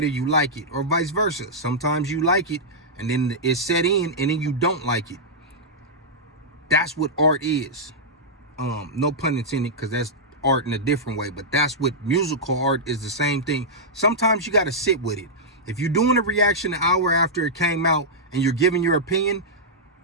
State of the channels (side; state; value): both; normal; correlation -0.09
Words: you like it, or vice versa. Sometimes you like it, and then it's set in, and then you don't like it. That's what art is. No pun intended, because that's art in a different way, but that's what musical art is, the same thing. Sometimes you got to sit with it. If you're doing a reaction an hour after it came out, and you're giving your opinion,